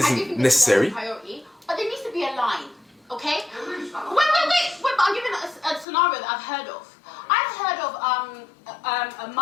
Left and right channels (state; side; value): drops out; right; at 5.9 s